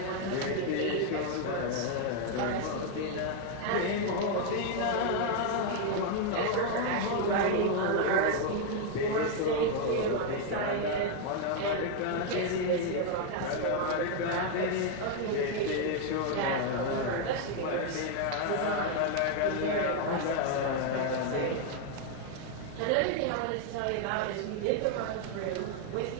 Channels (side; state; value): both; different; correlation 0.00